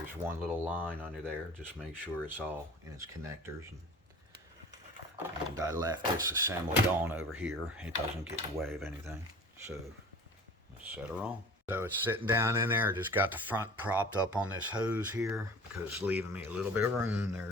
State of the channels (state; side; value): normal; both; correlation 0.41